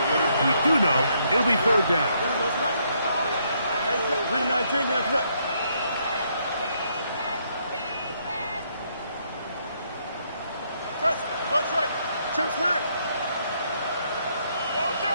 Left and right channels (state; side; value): inverted; both; correlation -0.72